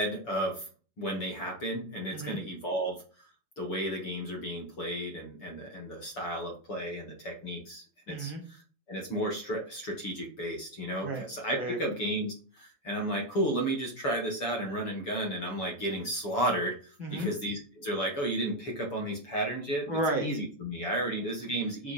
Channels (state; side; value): late; right; 6.9 ms